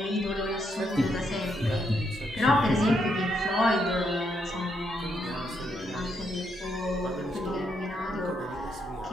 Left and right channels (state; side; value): normal; both; correlation 0.77